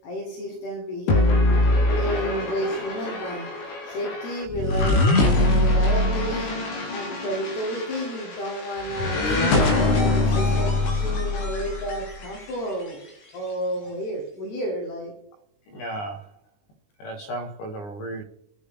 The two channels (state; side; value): late; right; 19 ms